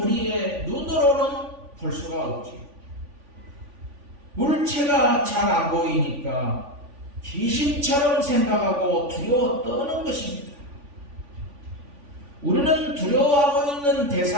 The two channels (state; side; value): late; left; 3.5 ms